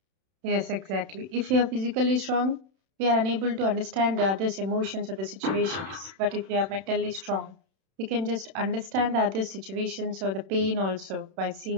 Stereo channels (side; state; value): left; late; 31 ms